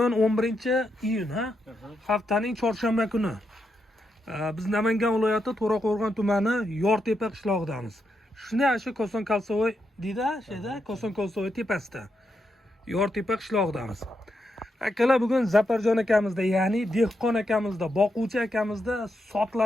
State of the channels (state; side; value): normal; both; correlation 0.83